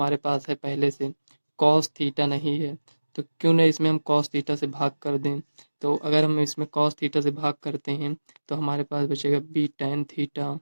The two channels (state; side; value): inverted; both; correlation -1.00